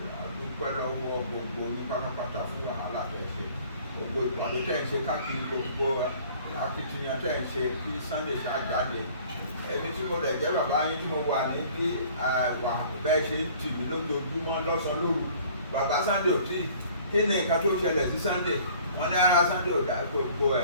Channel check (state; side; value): inverted; both; correlation -0.52